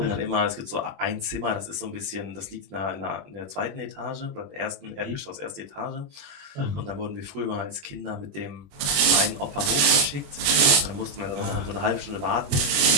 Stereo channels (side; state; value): left; late; 21 ms